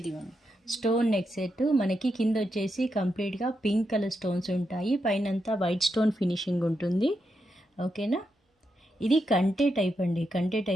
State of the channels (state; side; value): normal; both; correlation 0.84